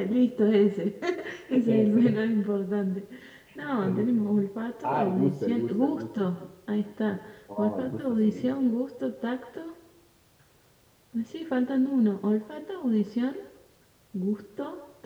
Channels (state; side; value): identical; both; correlation 1.00